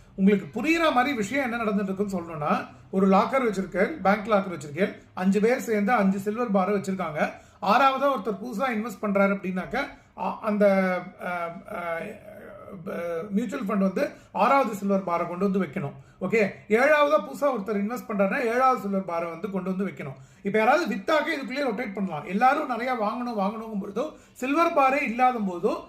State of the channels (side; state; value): both; identical; correlation 1.00